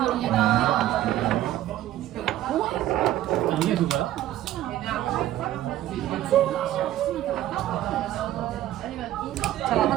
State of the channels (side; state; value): left; quieter; 13.6 dB